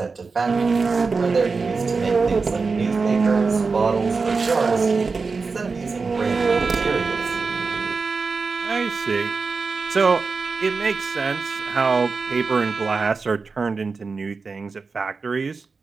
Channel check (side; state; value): left; quieter; 4.5 dB